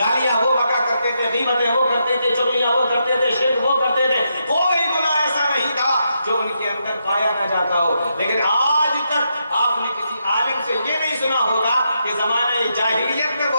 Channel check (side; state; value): both; inverted; correlation -0.82